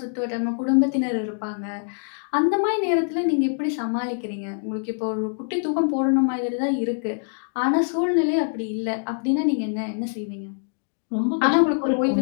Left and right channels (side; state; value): right; silent; digital silence